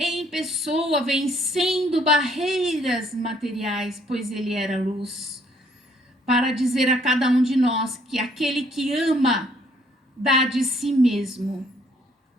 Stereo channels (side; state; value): both; normal; correlation 0.64